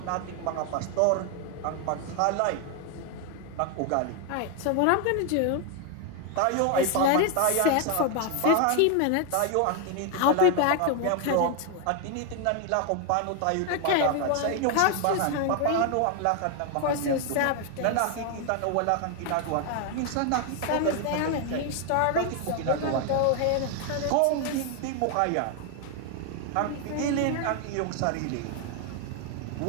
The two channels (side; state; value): both; different; correlation 0.01